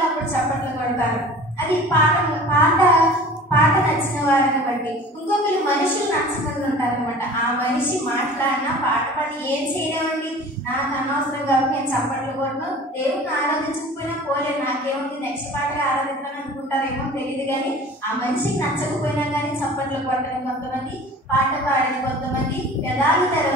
అప్పుడు చప్పట్లు కొడతారు. అది పాట నచ్చిన వారిని బట్టి. ఇంకొకరు మనుషులు నచ్చకుండా ఉంటారు అనమాట. ఆ మనిషి మాట్లాడినా పాట పాడి ఏం చేయలేమండి, నాకు అనవసరం కాబట్టి నేను చప్పట్లు కొట్టను, దేవుడిని ఆరాధించకపోయినా పోలే, నాకేముంది నెక్స్ట్ పాటగా ఆరాధించాలని అనుకుంటారేమో తెలియదు. కానీ ఆ మనిషికి నచ్చకపోయినా కానీ చప్పట్లు కొట్టని కొంతమంది, పాట పాడని కొంతమంది, పెదాలు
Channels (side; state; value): both; normal; correlation 0.42